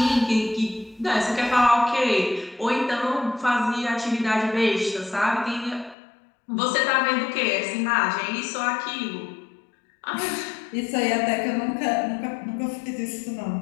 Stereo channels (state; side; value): drops out; right; at 6.0 s